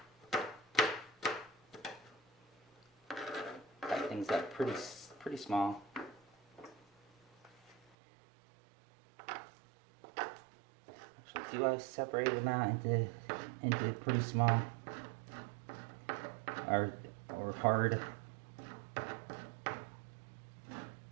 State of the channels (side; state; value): left; drops out; at 7.8 s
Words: Cut things up pretty small. Actually, see why I separated them out into pretty small or hard.